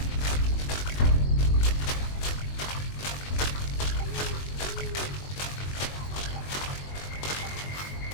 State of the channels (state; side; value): late; right; 21 ms